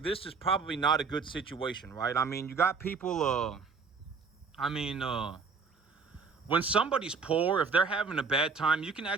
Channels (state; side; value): quieter; left; 5.1 dB